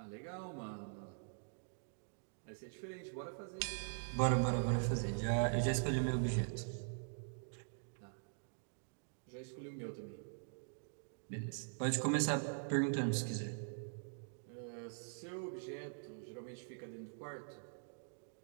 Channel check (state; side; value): silent; left; digital silence